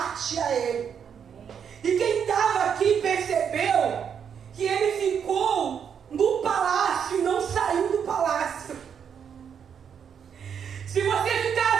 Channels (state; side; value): quieter; left; 7.6 dB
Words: a ele. E quem estava aqui percebeu que ele ficou no palácio e não saiu do palácio. Se você